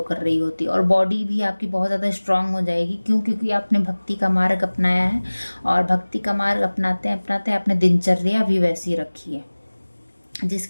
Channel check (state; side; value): inverted; both; correlation -1.00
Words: कर रही होती है और बॉडी भी आपकी बहुत ज़्यादा स्ट्रांग हो जाएगी। क्यों? क्योंकि आपने भक्ति का मार्ग अपनाया है और भक्ति का मार्ग अपनाते अपनाते आपने दिनचर्या भी वैसी रखी है,